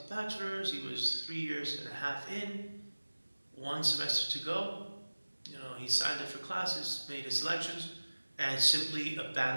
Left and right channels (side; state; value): both; inverted; correlation -1.00